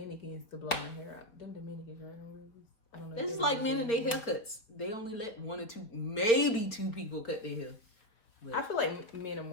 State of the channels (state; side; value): late; right; 4.3 ms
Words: to blow my hair out. Them Dominicans, right? I don't know. This is like men and their haircuts. They only let 1 or 2, maybe 2 people cut their hair. But I feel like men are